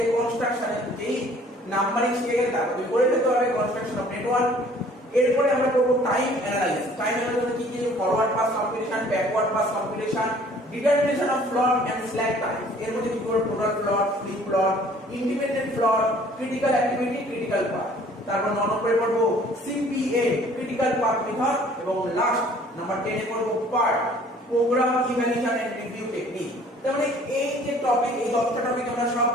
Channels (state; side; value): normal; both; correlation 0.54